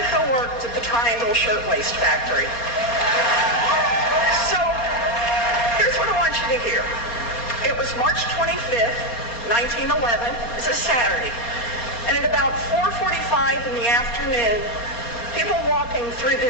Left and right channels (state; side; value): late; right; 4.3 ms